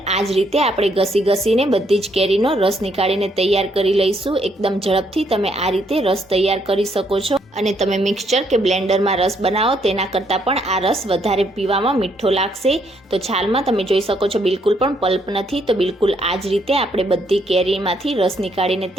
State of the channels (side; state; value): both; normal; correlation 0.72